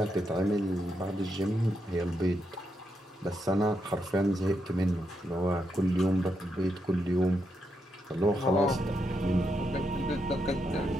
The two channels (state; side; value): normal; both; correlation 0.82